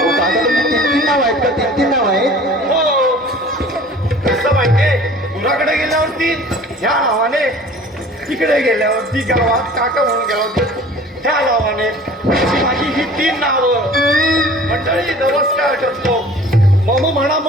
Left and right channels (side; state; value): both; normal; correlation 0.46